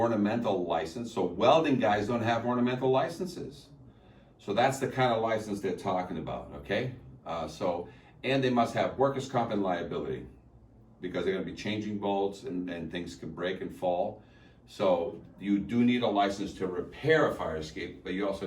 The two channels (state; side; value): identical; both; correlation 1.00